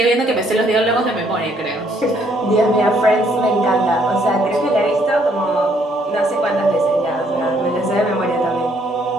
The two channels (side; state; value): both; normal; correlation 0.67